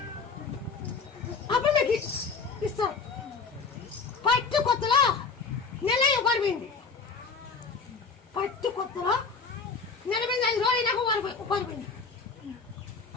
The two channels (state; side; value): quieter; right; 4.8 dB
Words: అప్పుడు మీకు ఇస్తారు పట్టు కొత్తలో నెల ఉపరిపోయింది పట్టు కొత్తలో 45 రోజులు నాకు ఉపరిపోయింది